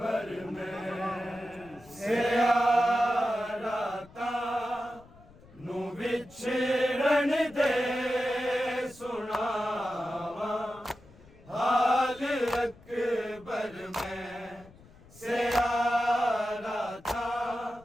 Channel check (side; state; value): left; noise; rumble, 24 dB below the sound